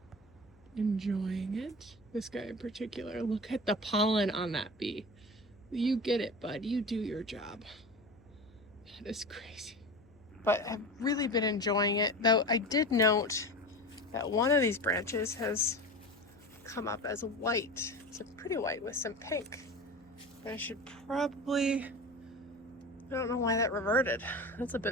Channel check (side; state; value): left; noise; hum, 29 dB below the sound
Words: enjoying it. This guy in particular, look at the pollen on that bee. You get it, bud. You do your job. That is crazy. But I've really been enjoying it, though I did note that one of these branches has come up as white. It's a pretty white with some pink. I should probably, I don't know why that reverted. That's a bit